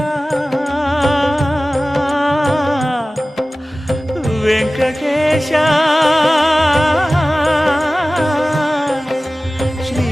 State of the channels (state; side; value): normal; both; correlation 0.97